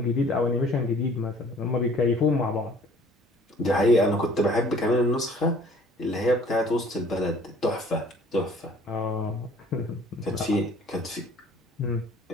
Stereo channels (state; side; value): normal; both; correlation 0.53